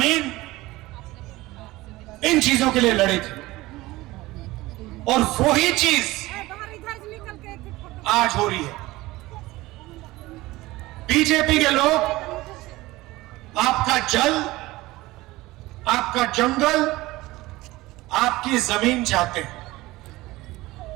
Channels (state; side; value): quieter; left; 19.1 dB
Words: इन चीजों के लिए लड़े थे। और वही चीज आज हो रही है। बीजेपी के लोग आपका जल, आपका जंगल, आपकी जमीन चाहते हैं,